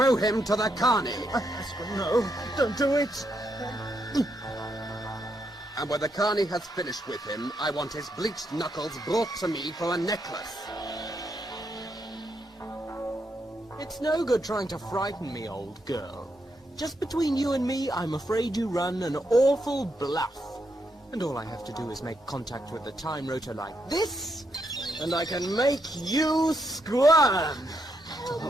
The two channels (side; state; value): both; normal; correlation 0.79